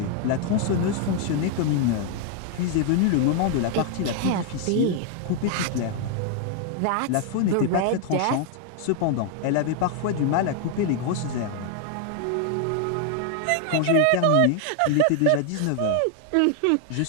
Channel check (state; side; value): different; both; correlation 0.00